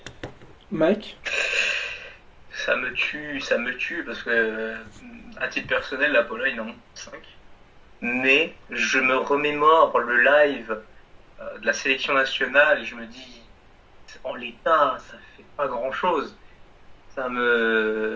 Mike? Ça me tue parce que, à titre personnel, la Pologne en 5. Mais je me remémore le live de la sélection nationale et je me dis, en l'état, ça fait pas grand-chose.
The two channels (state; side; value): identical; both; correlation 1.00